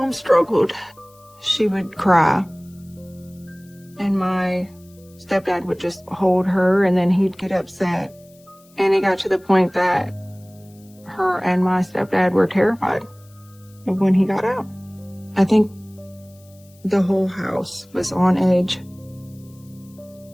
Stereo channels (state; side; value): noise; left; hiss, 29 dB below the sound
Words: struggled. She would cry. And my stepdad would just hold her and then he'd get upset. And it got to the point that her and my stepdad were terrified of when he got out. I think the whole house was on edge.